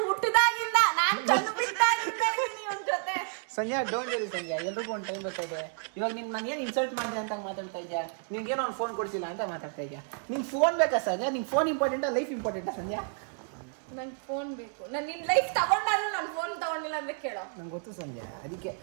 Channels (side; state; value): left; silent; 57 dB below the other